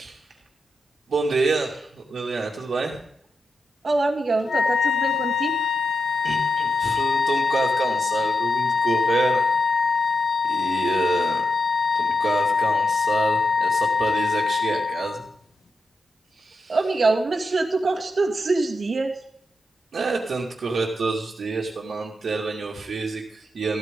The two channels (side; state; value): both; normal; correlation 0.86